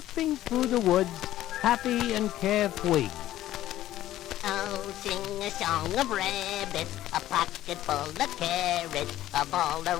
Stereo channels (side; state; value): right; quieter; 13.9 dB